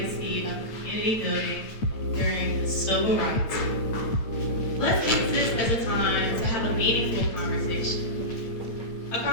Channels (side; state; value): right; late; 9.0 ms